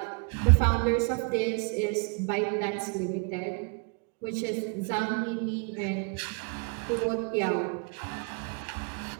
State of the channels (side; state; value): left; quieter; 37.8 dB